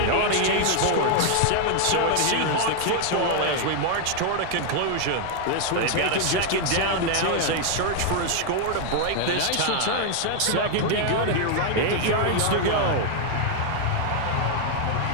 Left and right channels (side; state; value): both; different; correlation 0.00